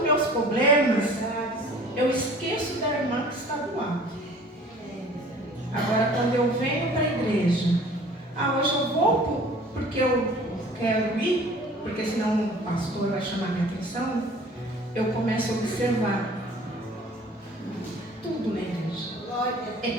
meus problemas, eu esqueço da irmã que está do lado. Agora, quando eu venho para a igreja, hoje eu vou porque eu quero ir, porque senão o pastor vai chamar minha atenção, eu começo a observar tudo na igreja. É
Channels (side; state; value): both; normal; correlation 0.48